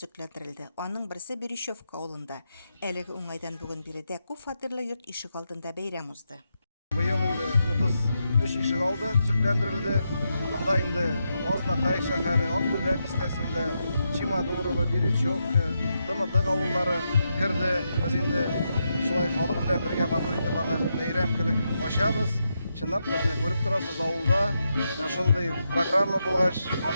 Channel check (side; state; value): both; inverted; correlation -0.84